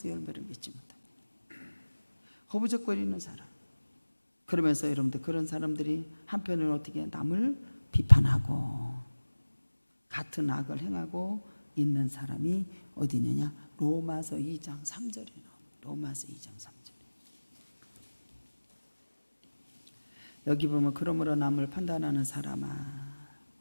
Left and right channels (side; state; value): both; inverted; correlation -1.00